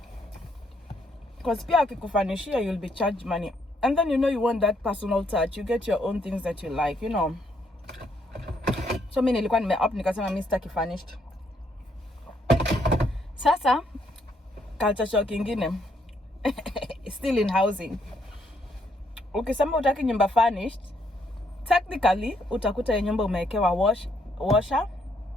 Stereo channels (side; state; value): both; normal; correlation 0.72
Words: Because pia akikufanishia, you'll be charged money. And then you want that personal touch. You get your own things that you like, So mimi nilikuwa nime-up nikasema mimi sitaki furnished. Sasa culture shock ingine. Still in housing. Ukisema utaki nyumba furnished, technically utakuta ya nyumba umewekewa washer,